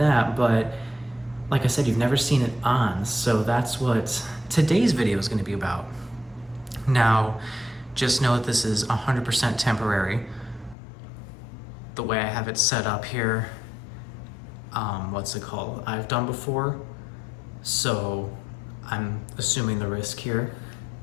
but like I said, you've never seen it on, so that's what today's video is going to be about. Now, just know that this is 100% temporary. The way I have it set up here, what's it called? I've done before, so I'm assuming the risk here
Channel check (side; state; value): right; drops out; at 10.8 s